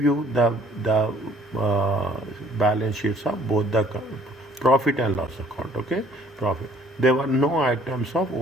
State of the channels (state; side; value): normal; both; correlation 0.58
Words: you the balance sheets of both the profit and loss account. Okay, profit. There were no items of